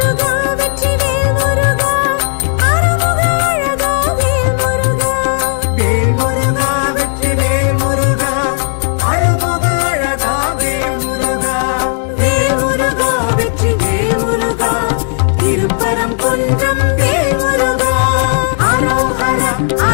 வெற்றி வேல்முருகா, அருமுக அழகா வேல்முருகா. வேல்முருகா வெற்றி வேல்முருகா, அழகுக அழகா வேல்முருகா. வேல்முருகா வெற்றி வேல்முருகா, திருப்பரம் குன்றம் வேல்முருகா. அரோஹர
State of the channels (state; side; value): silent; right; digital silence